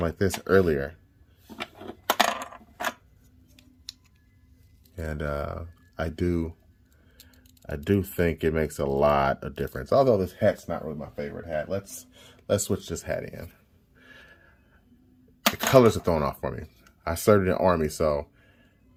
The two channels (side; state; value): both; identical; correlation 1.00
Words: like this earlier, and I do think it makes a lot of difference, although this hat's not really my favorite hat. Let's switch this hat in. The colors are throwing off for me. I started in Army, so